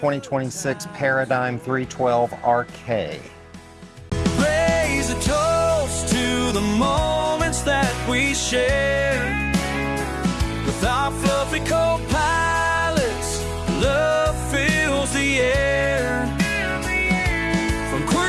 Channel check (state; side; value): identical; both; correlation 1.00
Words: Paradigm 312 RK. Raise a toast to the moments that we share with our fluffy co-pilots. Love fills the air. From